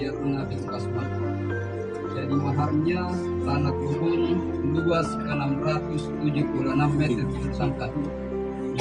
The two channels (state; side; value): identical; both; correlation 1.00